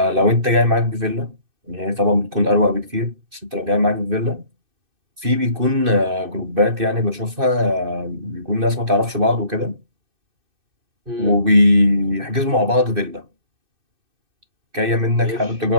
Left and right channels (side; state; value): left; late; 2.6 ms